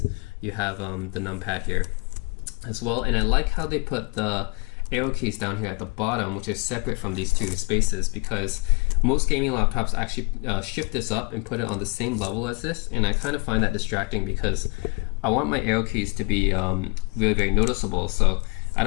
You have the numpad here as well. And I like how they put the arrow keys down here at the bottom, which is separate from these 2 spaces, because most gaming laptops actually shift this up and put it on the same level as this, and I kind of find that distracting because I want my arrow keys to be really very noticeable. So I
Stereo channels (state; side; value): quieter; right; 28.9 dB